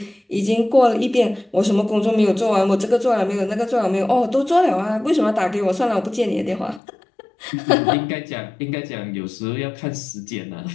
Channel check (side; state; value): right; drops out; at 6.8 s